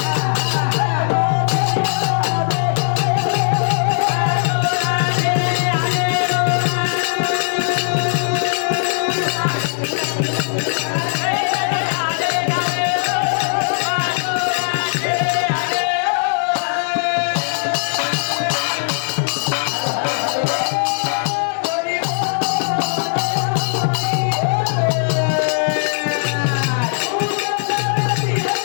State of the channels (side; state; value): right; silent; 62 dB below the other